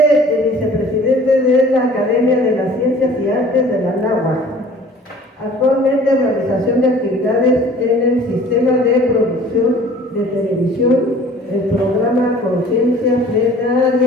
vicepresidente de la Academia de las Ciencias y Artes de la Anáhuac. Actualmente realización de actividades en el sistema de producción de televisión, el programa Conciencia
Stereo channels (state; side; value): normal; both; correlation 0.49